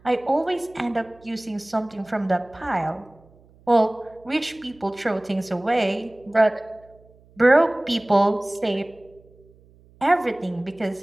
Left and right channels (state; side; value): noise; right; hum, 28 dB below the sound